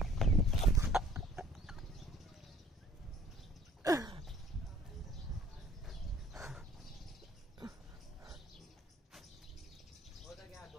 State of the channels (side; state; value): both; normal; correlation 0.55